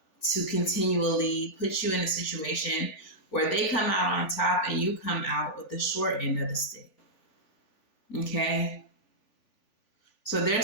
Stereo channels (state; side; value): late; right; 3.4 ms